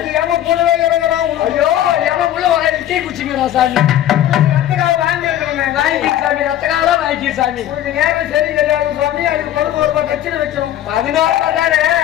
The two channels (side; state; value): right; quieter; 12.0 dB